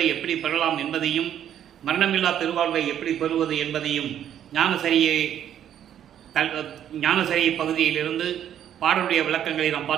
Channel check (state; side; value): quieter; left; 10.2 dB